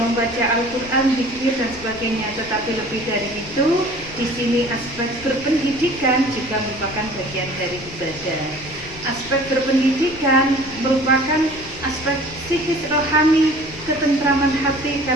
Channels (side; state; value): left; noise; rumble, 17 dB below the sound